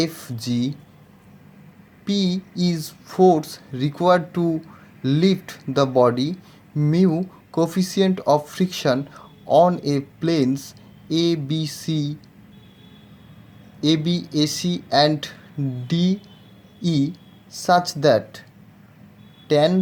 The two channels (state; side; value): identical; both; correlation 1.00